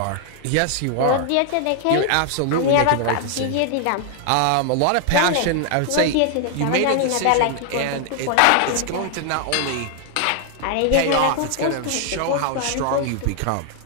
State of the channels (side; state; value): both; different; correlation 0.00